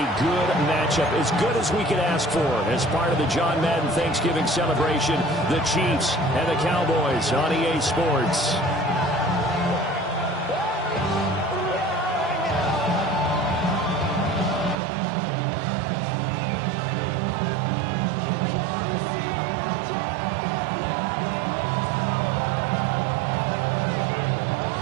good matchup, as good as we could ask for, as part of the John Madden Thanksgiving celebration, the Chiefs and the Cowboys on EA Sports.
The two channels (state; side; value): drops out; left; at 14.8 s